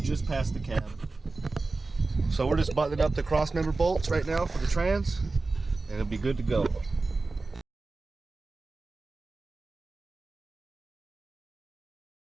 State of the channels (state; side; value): quieter; left; 3.5 dB